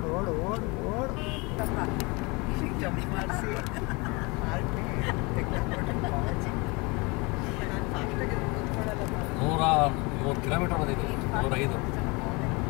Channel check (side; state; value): right; quieter; 27.1 dB